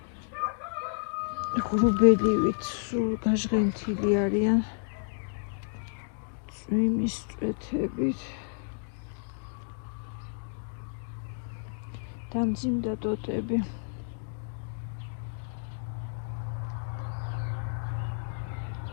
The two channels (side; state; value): right; silent; digital silence